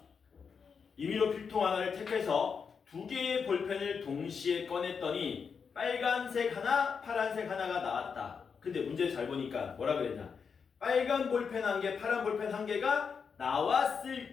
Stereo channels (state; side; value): quieter; right; 6.0 dB